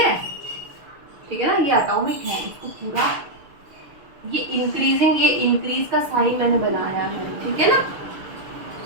है, ठीक है ना। ये एटॉमिक है, इसको पूरा ये इंक्रीजिंग, ये इंक्रीज का साइन मैंने बनाया है, ठीक है ना।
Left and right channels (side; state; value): left; late; 6.4 ms